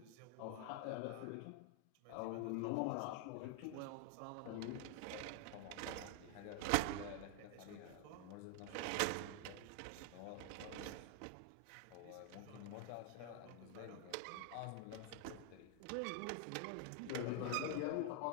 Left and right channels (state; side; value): different; both; correlation 0.00